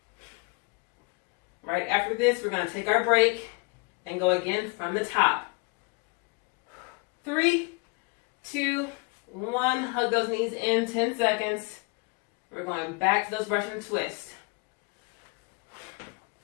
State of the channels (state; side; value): quieter; right; 30.5 dB